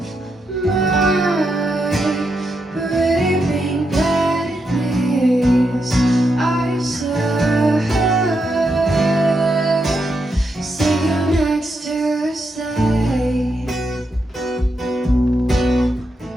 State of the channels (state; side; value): normal; both; correlation 0.83